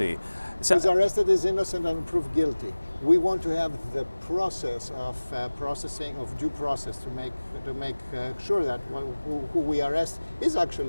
who is arrested is innocent and proved guilty. We want to have the process of processing of due process to make sure that who we arrest is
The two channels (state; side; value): inverted; both; correlation -1.00